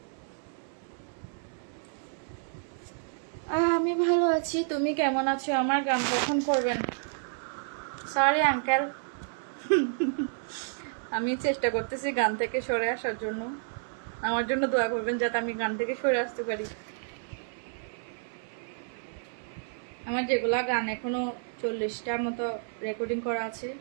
আমি ভালো আছি, তুমি কেমন আছো? আমার গান কখন করবেন? সরি আঙ্কেল, আমি চেষ্টা করতেছি গান থেকে সরে আসার জন্য। আমার জন্য দোয়া করবেন যাতে আমি গান থেকে সরে আসতে পারি। আমার যেগুলা গান এখনো 40টার মতো রেকর্ডিং করা আছে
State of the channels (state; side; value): silent; left; 58 dB below the other